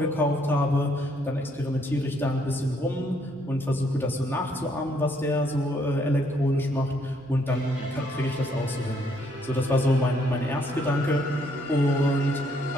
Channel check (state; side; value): noise; right; hum, 29 dB below the sound